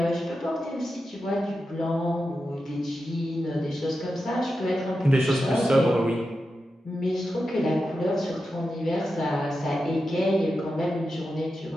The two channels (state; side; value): normal; both; correlation 0.90